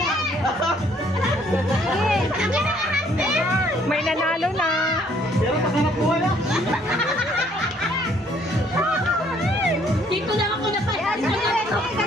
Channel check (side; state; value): both; normal; correlation 0.63